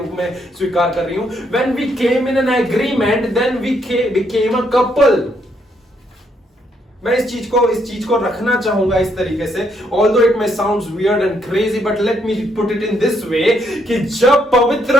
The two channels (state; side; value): normal; both; correlation 0.73